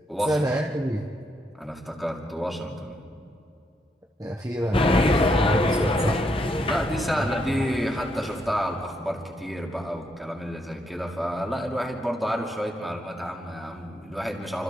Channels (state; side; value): normal; both; correlation 0.77